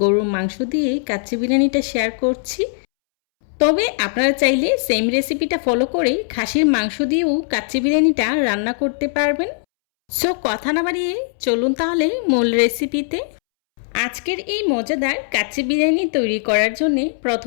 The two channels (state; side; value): silent; right; 66 dB below the other